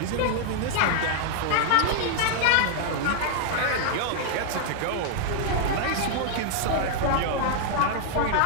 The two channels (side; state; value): both; different; correlation -0.01